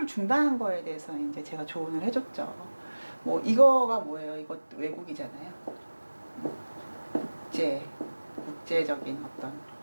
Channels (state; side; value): inverted; both; correlation -1.00